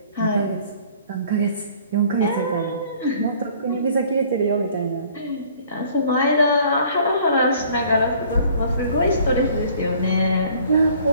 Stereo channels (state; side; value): inverted; both; correlation -0.55